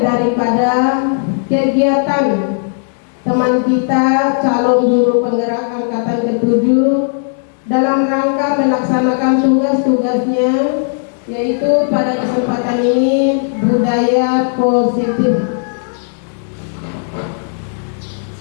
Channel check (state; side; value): silent; right; digital silence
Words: daripada kegiatan teman kita calon guru penggerak angkatan ke-7 dalam rangka melaksanakan tugas-tugasnya, yaitu pada kesempatan ini budaya positif.